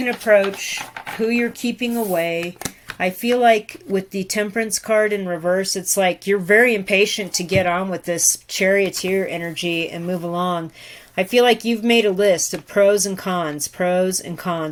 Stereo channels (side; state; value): both; identical; correlation 1.00